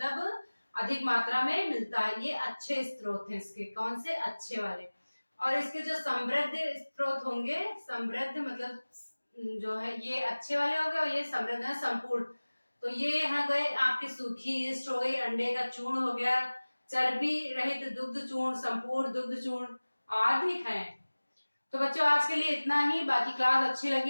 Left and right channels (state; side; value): inverted; both; correlation -1.00